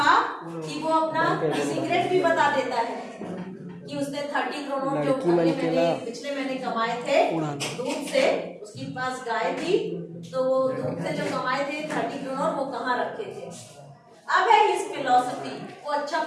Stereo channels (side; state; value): both; identical; correlation 1.00